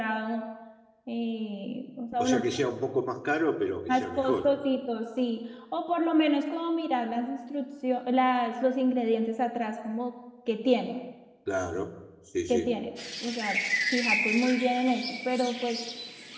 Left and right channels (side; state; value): both; identical; correlation 1.00